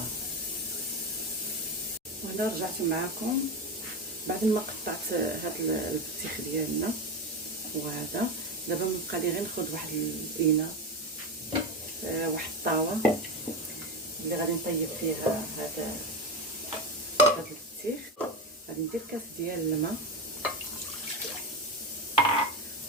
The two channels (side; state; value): both; normal; correlation 0.18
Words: وهنا رجعت معكم بعد ما قطعت هذا البطيخ ديالنا. وهذا دابا مبقى لي غير ناخذ واحد الاناء، واحد الطاوه اللي غادي نطيب فيها هذا البطيخ. غادي ندير كاس ديال الماء